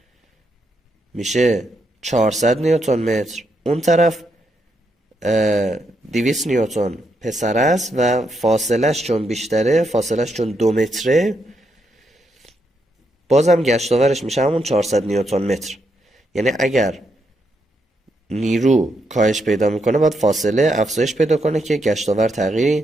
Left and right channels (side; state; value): both; normal; correlation 0.80